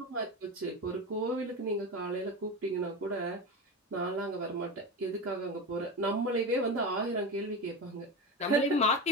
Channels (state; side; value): normal; both; correlation 0.21